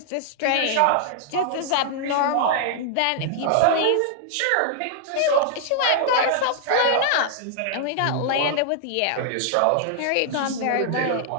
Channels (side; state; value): both; different; correlation -0.01